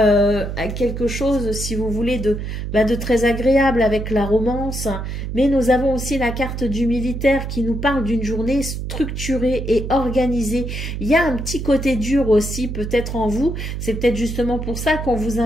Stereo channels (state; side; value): noise; right; hum, 5 dB below the sound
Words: quelque chose, si vous voulez, de très agréable avec la romance. Mais nous avons aussi la carte du militaire qui nous parle d'une journée structurée et organisée. Il y a un petit côté dur aussi, peut-être en vous. C'est peut-être justement pour ça qu'on vous